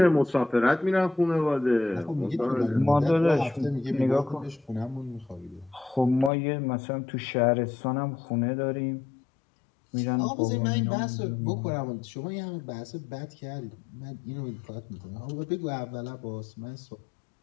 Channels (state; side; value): drops out; right; at 6.3 s